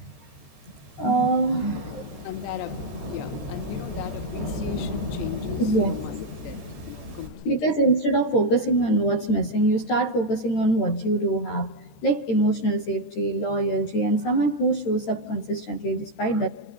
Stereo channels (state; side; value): late; right; 13 ms